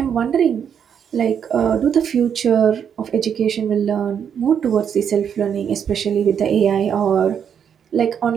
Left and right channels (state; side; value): quieter; left; 8.0 dB